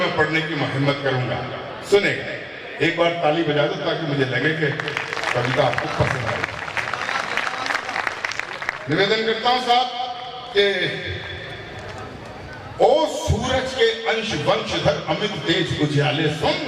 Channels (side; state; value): both; identical; correlation 1.00